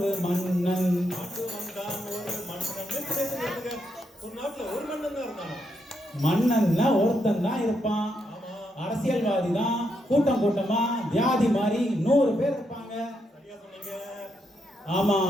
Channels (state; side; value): normal; both; correlation 0.80